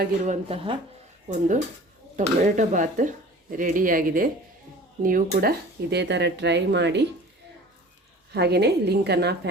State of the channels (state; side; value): normal; both; correlation 0.43